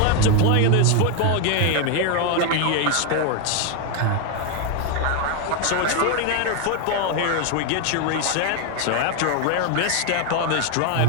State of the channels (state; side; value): different; both; correlation 0.01